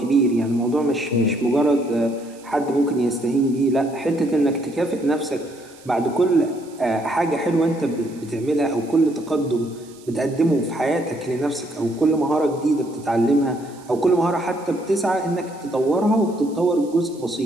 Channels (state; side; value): noise; right; hiss, 25 dB below the sound